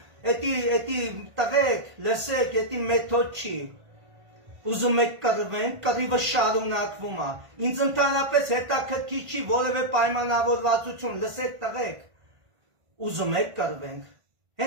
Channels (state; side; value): late; left; 1.5 ms